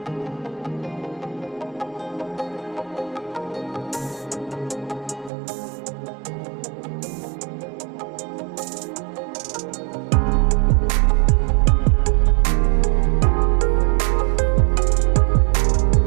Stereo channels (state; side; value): drops out; left; at 5.3 s